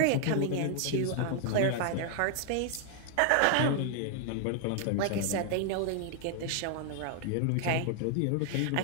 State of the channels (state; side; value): different; both; correlation 0.00